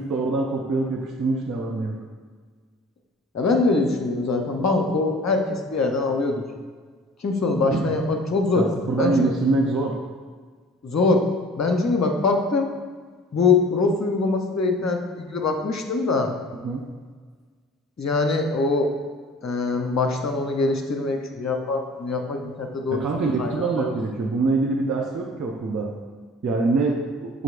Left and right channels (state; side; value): normal; both; correlation 0.46